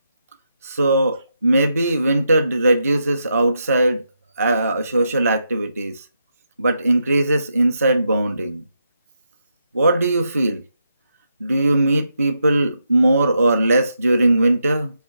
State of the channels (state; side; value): inverted; both; correlation -0.83